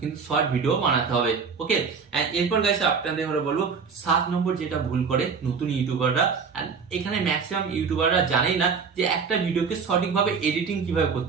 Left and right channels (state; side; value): quieter; left; 5.6 dB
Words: কিন্তু শর্ট ভিডিও বানাতে হবে। ওকে, এরপর গাইস আপনাদের বলবো 7 নম্বর যেটা ভুল করে নতুন ইউটিউবাররা, এখানে ম্যাক্সিমাম ইউটিউবাররা জানেই না যে একটা ভিডিওকে সঠিকভাবে এডিটিং কিভাবে